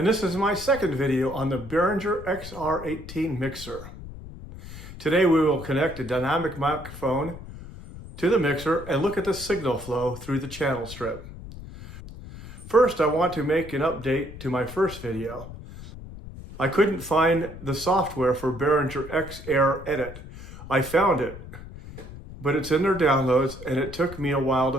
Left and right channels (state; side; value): noise; left; rumble, 14 dB below the sound